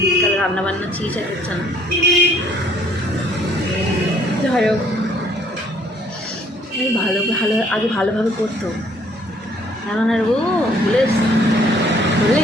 বিকালে রান্নাবান্না চিজ আর হচ্ছে না। যাই হোক, আগে ভালোভাবে করতো, এখন আর ও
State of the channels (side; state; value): both; normal; correlation 0.62